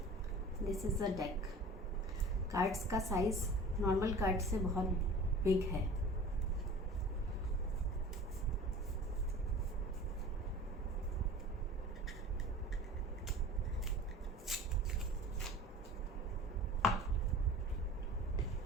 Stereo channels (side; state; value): both; normal; correlation 0.40